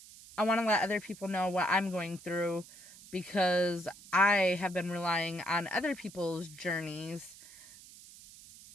I want to let other people know what I'm going through, because I have been relying on other people's journeys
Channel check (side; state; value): right; noise; hiss, 19 dB below the sound